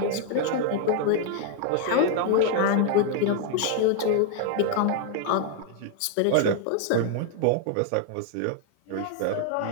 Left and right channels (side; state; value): both; different; correlation 0.00